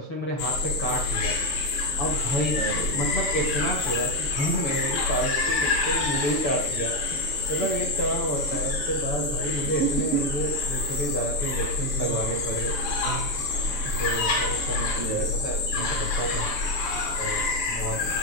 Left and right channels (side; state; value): right; late; 6.9 ms